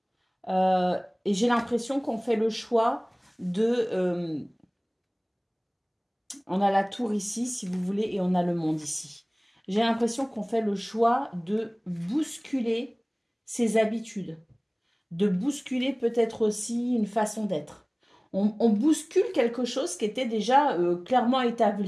et j'ai l'impression qu'on fait le choix de... on a la tour ici, si vous voulez, et on a le monde ici. J'ai l'impression qu'on fait le choix de bousculer ses habitudes, de bousculer peut-être aussi une façon d'être. On bouscule quelque chose qui était déjà clairement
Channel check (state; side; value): identical; both; correlation 1.00